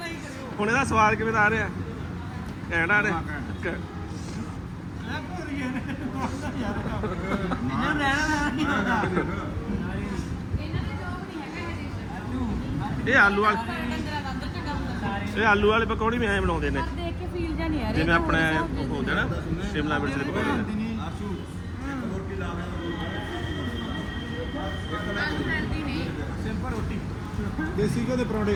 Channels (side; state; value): both; identical; correlation 1.00